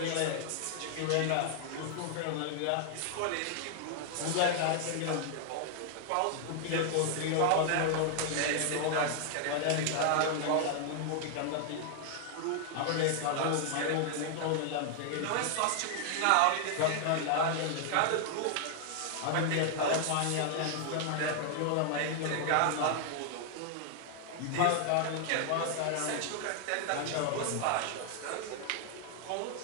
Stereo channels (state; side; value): different; both; correlation 0.00